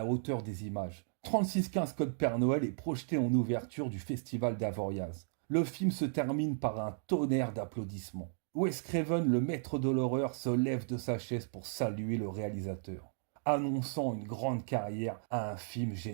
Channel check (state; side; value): silent; left; digital silence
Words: hauteur des images. 3615 Code Père Noël est projeté en ouverture du festival d'Avoriaz. Le film se termine par un tonnerre d'applaudissements. Wes Craven, le maître de l'horreur, se lève de sa chaise pour saluer le réalisateur. annonçant une grande carrière à un film